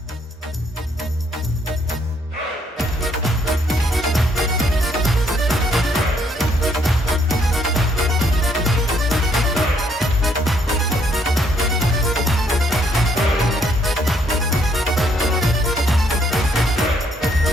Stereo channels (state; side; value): normal; both; correlation 0.69